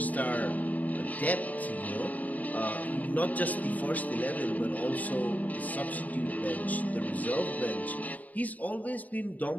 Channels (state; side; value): late; right; 0.075 ms